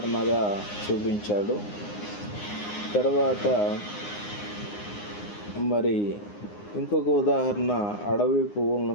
చూపించాడు. తర్వాత మరి ఇంకొక ఉదాహరణ అడవి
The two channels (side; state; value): right; late; 9.7 ms